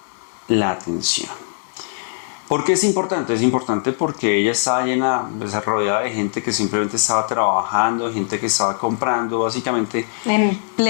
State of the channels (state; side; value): silent; right; digital silence